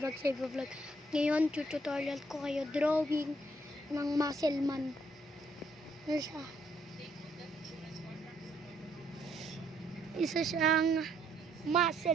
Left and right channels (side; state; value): both; normal; correlation 0.70